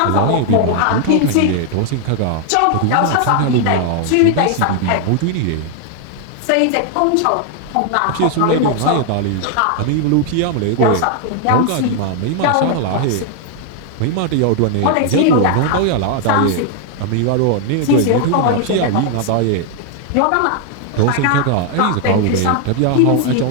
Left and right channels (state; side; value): different; both; correlation 0.00